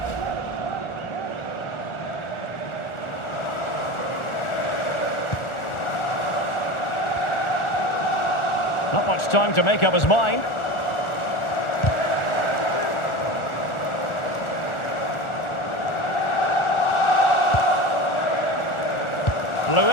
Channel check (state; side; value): late; right; 1.4 ms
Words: Not much time to make up his mind.